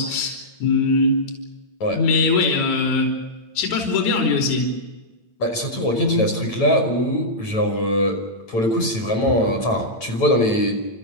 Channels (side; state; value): right; late; 9.0 ms